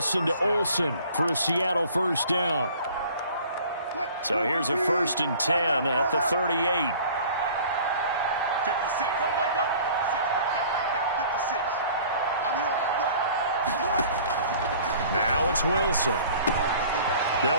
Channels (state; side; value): inverted; both; correlation -0.49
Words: to Olsen for a Seattle 1st down. So here's a 1st and 10 at the 38. 56. Go. 6 right there. 56. I'm here on the block. Now it's Wilson.